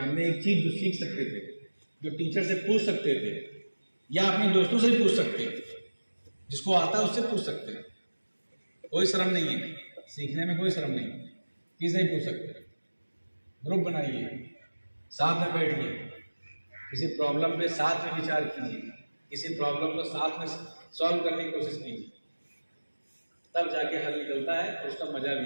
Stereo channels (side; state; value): both; inverted; correlation -1.00